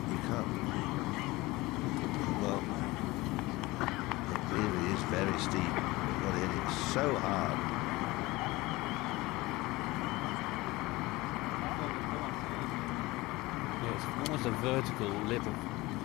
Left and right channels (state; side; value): quieter; right; 20.9 dB